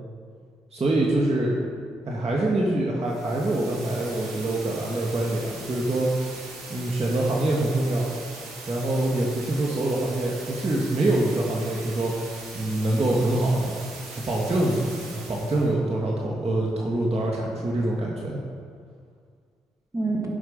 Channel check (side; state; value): both; normal; correlation 0.83